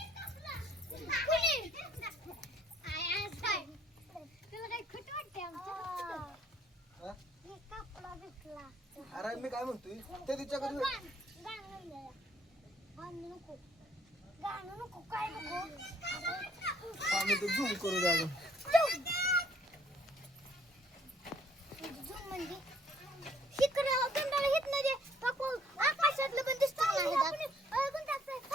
अरे मी काय म्हणतोय ते तिच्याकडे आम्ही ते झूम करू द्या आकाशातलं पण दिसत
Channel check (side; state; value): both; normal; correlation 0.62